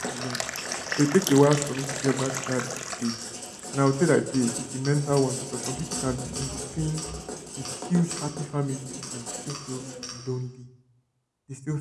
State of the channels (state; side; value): identical; both; correlation 1.00